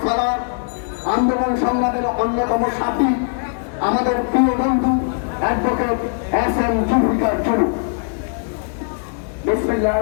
সালার, আন্দোলন সংগ্রামের অন্যতম সাথী, আমাদের প্রিয় বন্ধু অ্যাডভোকেট এস.এম. জুলফিকার জুলু।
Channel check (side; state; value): right; silent; digital silence